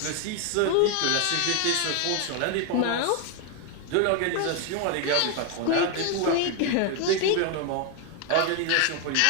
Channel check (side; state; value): both; different; correlation 0.01